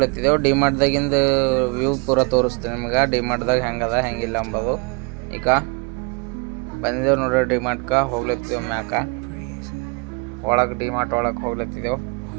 ಡಿಮಾರ್ಟ್ದಾಗಿಂದು ವ್ಯೂ ಪೂರ ತೋರಿಸ್ತೀನಿ ನಿಮ್ಗೆ. ಡಿಮಾರ್ಟ್ದಾಗ ಹೆಂಗದ ಹೆಂಗಿಲ್ಲ ಅಂಬೋದು. ಈಗ ಬಂದಿದ್ದೇವೆ ನೋಡ್ರಿ, ಡಿಮಾರ್ಟ್ಗೆ ಹೋಗ್ಲತ್ತಿದ್ದೆವು. ಮ್ಯಾಕ ಒಳಗೆ ಡಿಮಾರ್ಟ್ ಒಳಗೆ ಹೋಗ್ಲತ್ತಿದ್ದೆವು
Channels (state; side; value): quieter; left; 32.3 dB